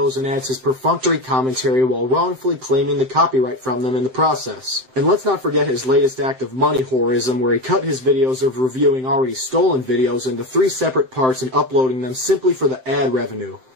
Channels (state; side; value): late; left; 7.7 ms